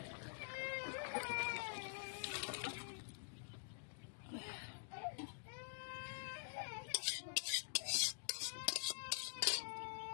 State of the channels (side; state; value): right; silent; digital silence